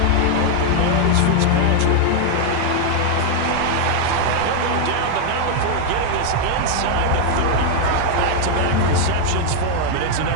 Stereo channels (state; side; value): different; both; correlation 0.00